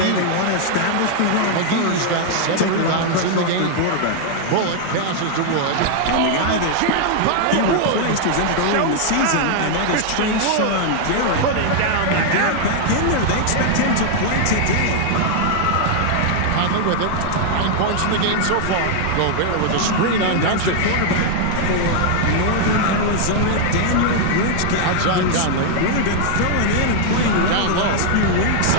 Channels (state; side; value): different; both; correlation 0.00